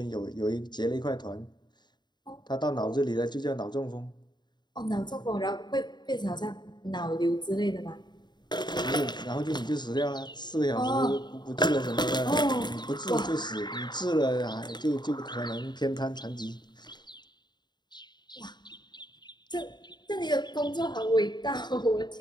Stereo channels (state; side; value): late; right; 0.21 ms